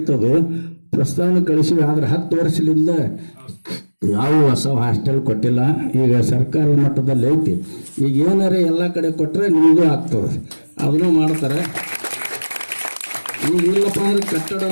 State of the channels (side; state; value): both; inverted; correlation -1.00